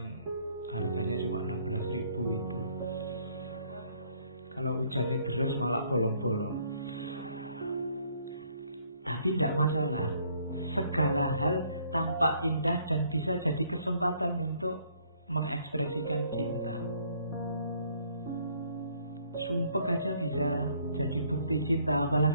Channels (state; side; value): inverted; both; correlation -0.64